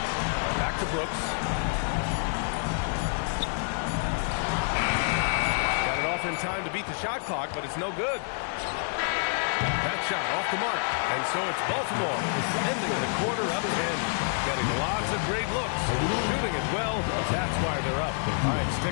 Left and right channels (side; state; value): right; silent; 59 dB below the other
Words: Back to Brooks. Got it off in time to beat the shot clock, but it's no good. That shot off the mark. And so it's Baltimore ending the quarter up 10. Getting lots of great looks. Shooting it well. That's why they're up. All right,